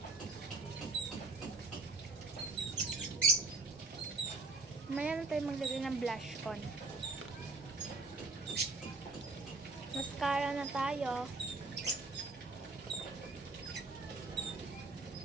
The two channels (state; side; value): quieter; left; 3.4 dB